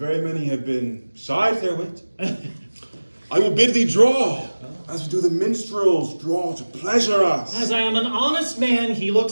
many have been side their wit. I will bid thee draw, as we do the minstrels draw to pleasure us. As I am an honest man, he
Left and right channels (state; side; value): inverted; both; correlation -1.00